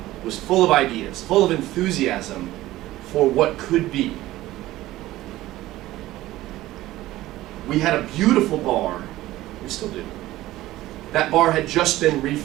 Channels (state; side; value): quieter; left; 16.2 dB